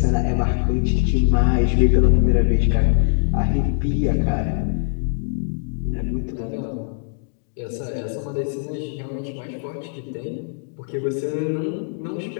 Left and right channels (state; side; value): silent; right; digital silence